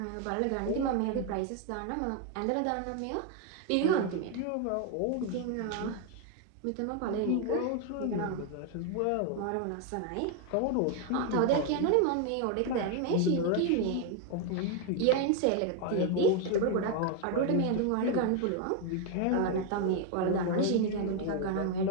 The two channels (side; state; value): both; different; correlation 0.01